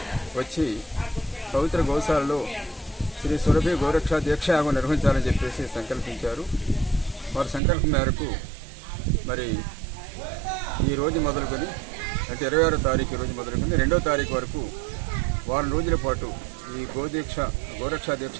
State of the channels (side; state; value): left; drops out; at 7.6 s